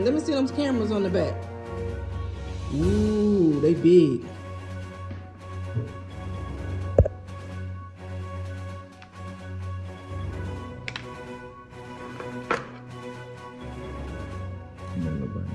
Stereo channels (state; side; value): identical; both; correlation 1.00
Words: Let me see those cameras on the back. Ooh, they big.